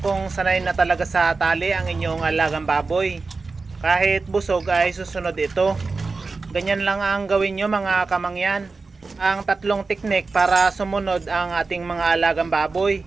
kung sanay na talaga sa tali ang inyong alagang baboy. Kahit busog ay susunod ito. Ganyan lang ang gawin nyo mga kamangyan. Ang 3 teknik para sumunod ang ating mga alagang baboy.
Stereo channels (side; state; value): left; quieter; 4.1 dB